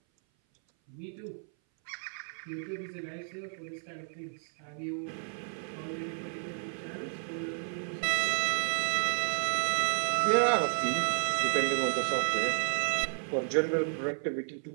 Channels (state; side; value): silent; left; 56 dB below the other